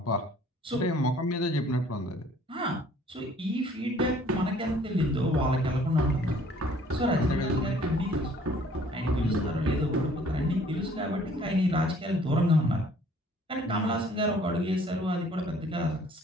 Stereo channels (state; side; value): normal; both; correlation 0.56